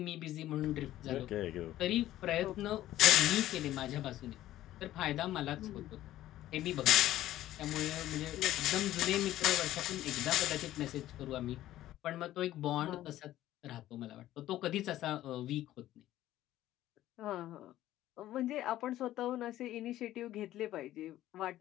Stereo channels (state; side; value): quieter; right; 14.1 dB